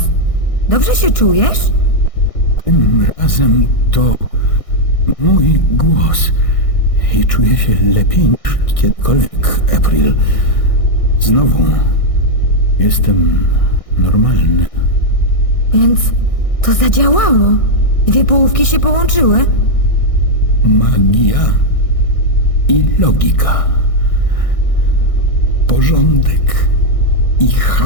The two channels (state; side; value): late; right; 1.6 ms